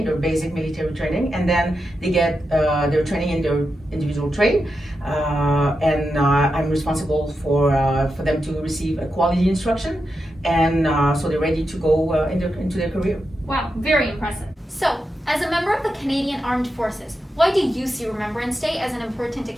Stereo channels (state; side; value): normal; both; correlation 0.88